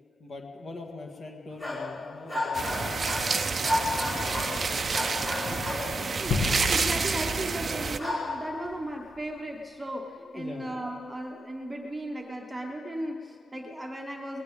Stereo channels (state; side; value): normal; both; correlation 0.86